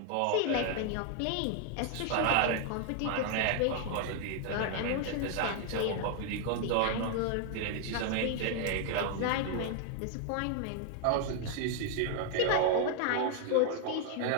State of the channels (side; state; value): both; different; correlation 0.00